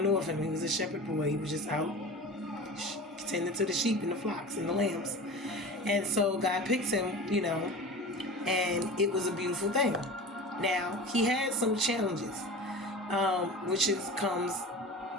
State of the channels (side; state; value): both; normal; correlation 0.34